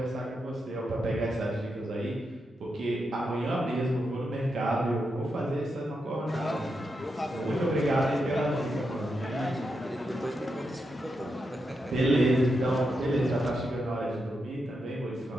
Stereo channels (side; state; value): both; normal; correlation 0.85